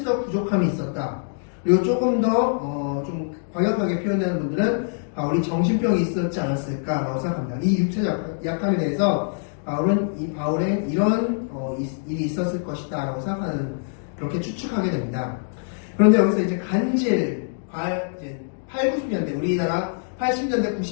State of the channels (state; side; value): silent; right; digital silence